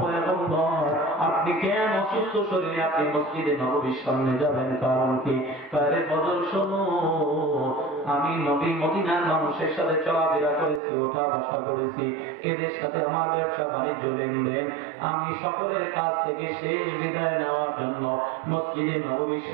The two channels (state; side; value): drops out; left; at 10.8 s